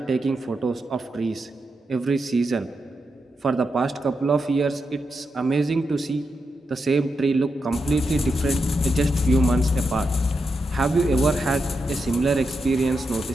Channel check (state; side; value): normal; both; correlation 0.86